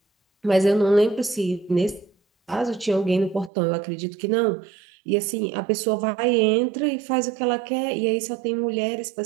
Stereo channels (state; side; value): drops out; left; at 3.5 s